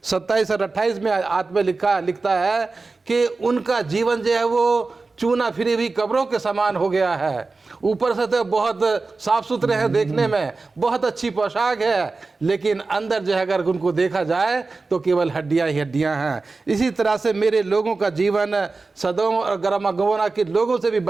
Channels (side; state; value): left; quieter; 3.8 dB